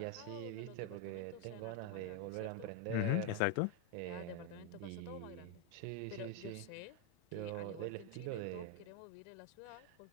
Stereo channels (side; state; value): both; different; correlation 0.02